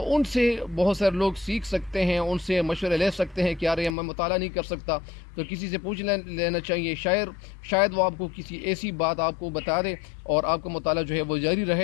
ان سے بہت سارے لوگ سیکھ سکتے ہیں, ان سے مشورے لے سکتے ہیں کہ یار میں مطالعہ نہیں کر سکتا تو کسی سے پوچھ لینا چاہیے. شاید وہ آپ کو کسی ایسی بات آپ کو بتا دے اور آپ کا مطالعہ جو ہے وہ جاری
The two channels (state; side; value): drops out; right; at 4.0 s